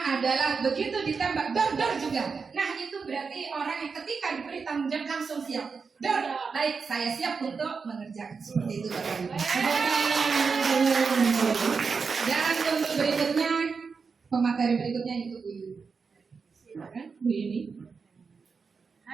adalah begitu ditembak dor juga. Nah, itu berarti orang yang ketika diberi tanggung jawab langsung siap. Dor, baik, saya siap untuk mengerjakan. Seperti itu Bapak Ibu. Dan untuk berikutnya, pemateri berikutnya itu Bu Yuni. Silakan Bu Yuni.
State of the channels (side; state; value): left; quieter; 5.2 dB